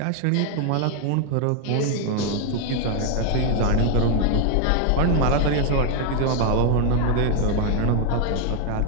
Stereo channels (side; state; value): both; different; correlation 0.01